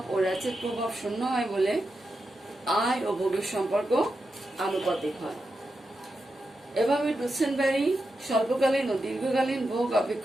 ও র্যাচেট প্রভাব শূন্য হয় বলে আয় ও ভোগের সম্পর্ক আনুপাতিক হয়। এভাবে ডুসেনবেরি স্বল্পকালীন ও দীর্ঘকালীন ভোগ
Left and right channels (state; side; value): normal; both; correlation 0.88